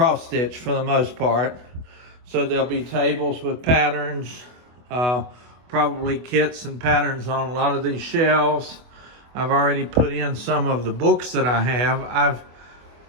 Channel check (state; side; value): late; left; 24 ms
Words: stitch for the most part. So there'll be tables with patterns, probably kits and patterns on a lot of these shelves. I've already put in some of the books that I have. I've